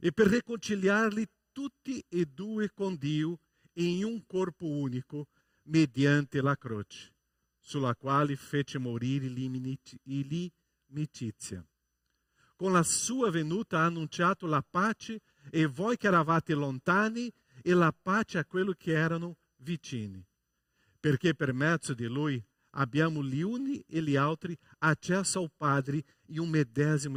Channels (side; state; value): both; identical; correlation 1.00